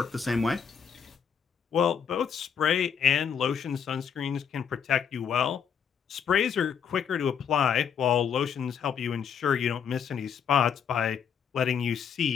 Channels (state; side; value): quieter; right; 7.5 dB